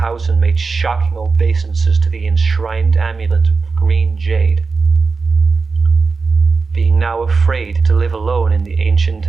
and made shocking obeisances to the enshrined amulet of green jade. Being now afraid to live alone in the ancient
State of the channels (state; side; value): quieter; left; 4.5 dB